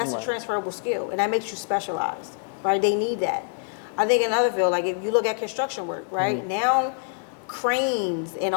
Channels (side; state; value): right; silent; digital silence